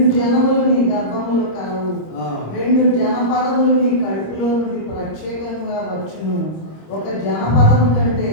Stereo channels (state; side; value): late; right; 26 ms